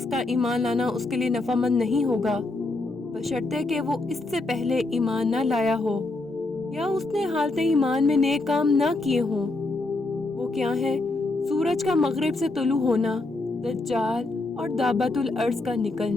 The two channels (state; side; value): quieter; right; 3.0 dB